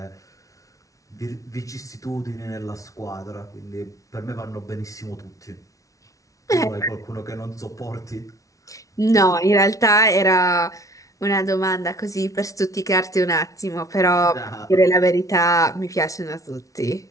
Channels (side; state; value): right; late; 0.16 ms